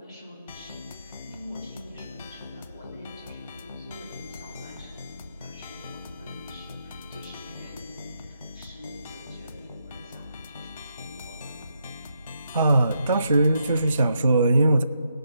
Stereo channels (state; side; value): inverted; both; correlation -0.80